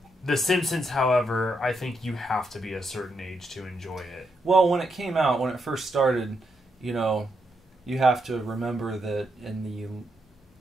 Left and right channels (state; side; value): normal; both; correlation 0.81